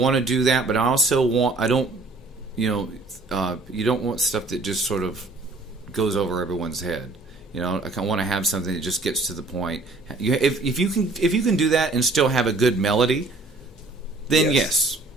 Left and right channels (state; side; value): quieter; left; 3.2 dB